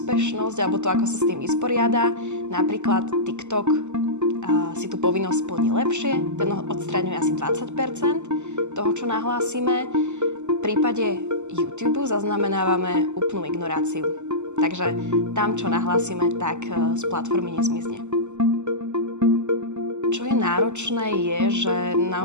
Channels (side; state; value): left; late; 0.83 ms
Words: alebo to, ako sa s tým vysporiada. Napríklad TikTok si tú povinnosť splní lepšie, ten odstraňuje asi 20% toho, čo nahlásime. V prípade YouTube zaznamenávame úplnú ignoráciu. Takže tam, čo nahlásime, tak z platformy nezmizne. Čo je náročné je, že